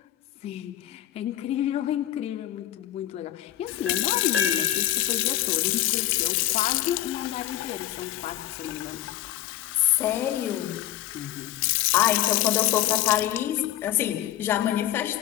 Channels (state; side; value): quieter; right; 13.4 dB